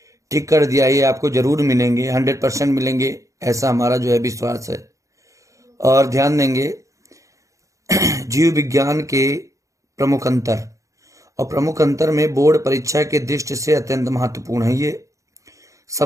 टिक कर दिया, ये आपको जरूर मिलेंगे, 100% मिलेंगे, ऐसा हमारा जो है विश्वास है। और ध्यान देंगे जीव विज्ञान के प्रमुख अंतर, और प्रमुख अंतर में बोर्ड परीक्षा के दृष्टि से अत्यंत महत्वपूर्ण है। ये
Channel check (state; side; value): late; left; 0.15 ms